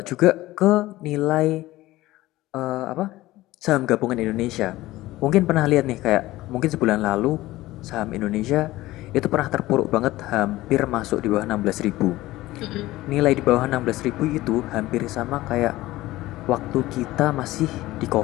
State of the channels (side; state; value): right; quieter; 17.3 dB